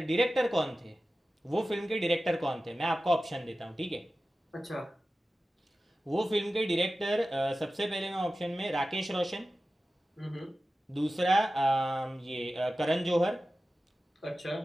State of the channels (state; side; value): normal; both; correlation 0.95